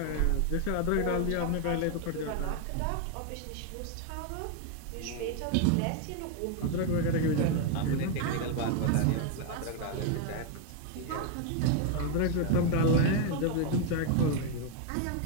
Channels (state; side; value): different; both; correlation 0.01